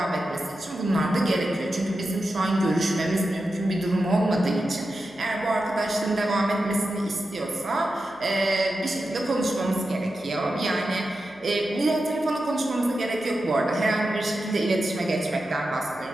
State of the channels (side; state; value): right; noise; hum, 30 dB below the sound